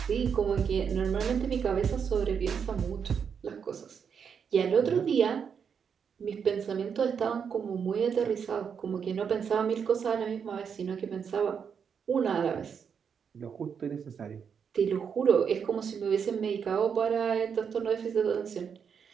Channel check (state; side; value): quieter; left; 6.9 dB